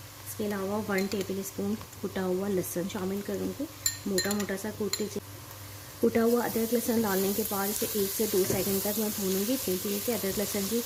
इसके अलावा 1 टेबल स्पून कुटा हुआ लहसुन शामिल करूँगी, मोटा मोटा सा कूट लीजिए। कुटा हुआ अदरक लहसुन डालने के बाद इसे 1 से 2 सेकंड तक मैं भूनूंगी। धीरे धीरे से अदरक लहसुन की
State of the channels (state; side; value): identical; both; correlation 1.00